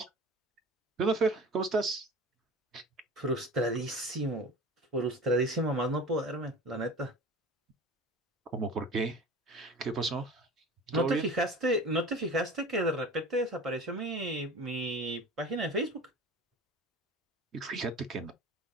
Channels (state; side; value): normal; both; correlation 0.38